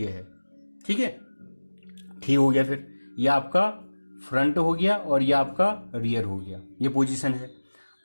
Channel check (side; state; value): both; inverted; correlation -1.00